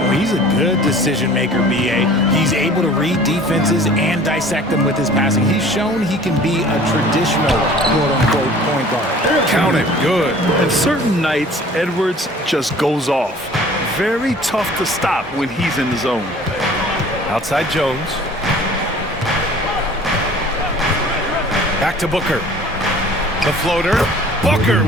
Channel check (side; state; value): both; normal; correlation 0.48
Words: he's a good decision maker, B.A. He's able to read defenses and dissect them with his passing. He's shown he can be a traditional quote-unquote point guard. Count it. Good. And certain nights, Edwards just goes off. Very tough to stop when he's in the zone. Outside Jones. Back to Booker. The floater. Booker